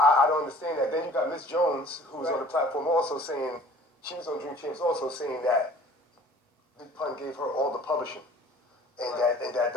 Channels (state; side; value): normal; both; correlation 0.49